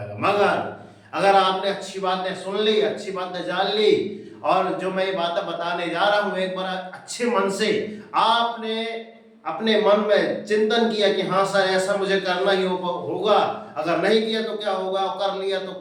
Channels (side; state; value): both; identical; correlation 1.00